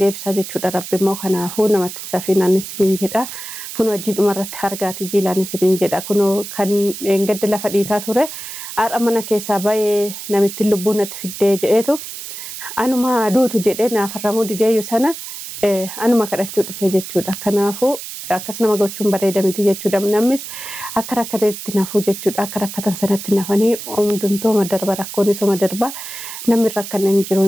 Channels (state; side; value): noise; right; hiss, 10 dB below the sound